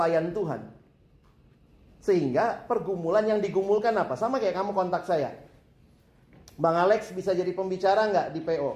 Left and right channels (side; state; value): both; identical; correlation 1.00